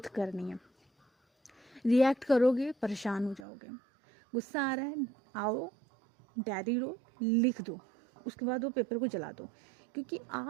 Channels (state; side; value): drops out; left; at 3.5 s